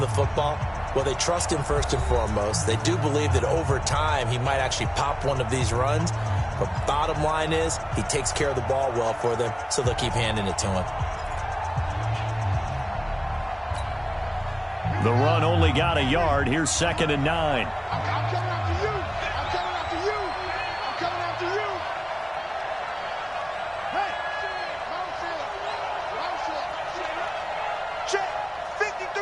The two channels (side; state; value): both; identical; correlation 1.00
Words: football? Well, they trust him first and foremost. They do believe that over time he might actually pop one of these runs. But bottom line is he takes care of the ball well for them, so they'll keep handing it to him. The run only got a yard. Here's 2nd and 9. I'm coming after you. I'm coming after you. I'm coming after you. Hey, check